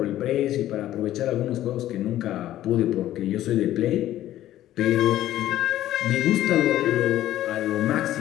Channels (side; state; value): right; quieter; 13.4 dB